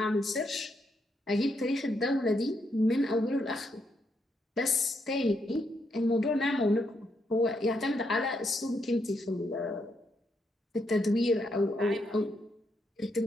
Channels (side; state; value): both; normal; correlation 0.78